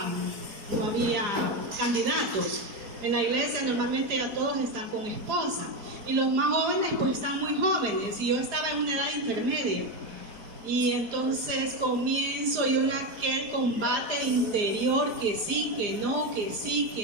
candidatos. En la iglesia normalmente ya todos están con esposa y los más jóvenes pues están muy jóvenes y yo estaba en una edad intermedia y entonces comienzo yo en aquel combate interior que sí, que no, que sí,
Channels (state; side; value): late; left; 4.9 ms